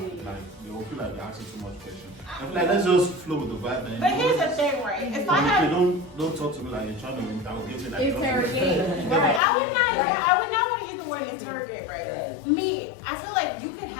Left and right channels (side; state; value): right; drops out; at 9.4 s